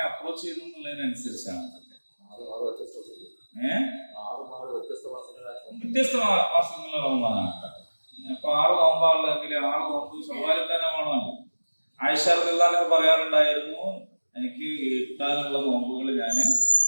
അപ്രോച്ച് ചെയ്തു എന്നുള്ളതിനനുസരിച്ചാണ് വ്യത്യസ്ത മാസങ്ങളിൽ റമദാനാക്കാം. അപ്പൊ 6 നോമ്പാണെങ്കിൽ 6 നോമ്പ് ശവാലിത്താനമാണോ? ആയിഷ റളിയല്ലാഹു പറയാറുണ്ടായിരുന്നു, എനിക്ക് കിട്ടാനുള്ള നോമ്പുകൾ ഞാൻ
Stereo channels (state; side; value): inverted; both; correlation -1.00